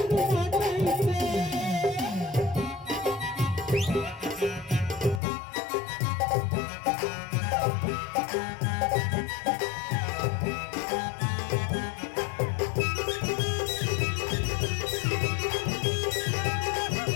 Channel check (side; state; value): right; drops out; at 5.2 s